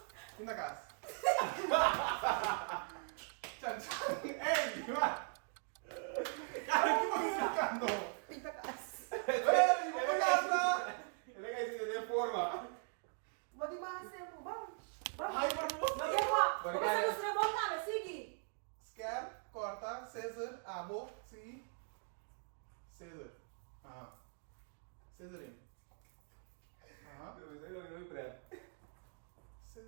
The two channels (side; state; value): left; silent; 51 dB below the other